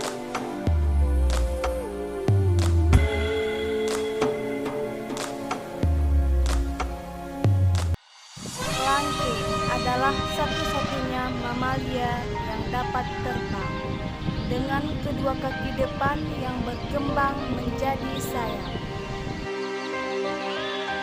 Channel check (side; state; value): both; identical; correlation 1.00